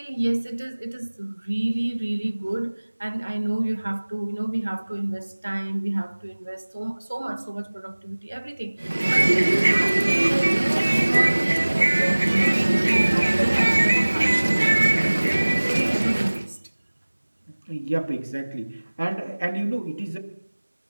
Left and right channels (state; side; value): inverted; both; correlation -1.00